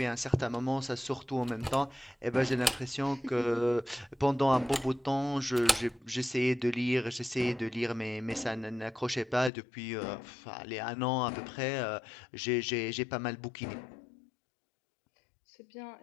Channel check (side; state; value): right; drops out; at 9.5 s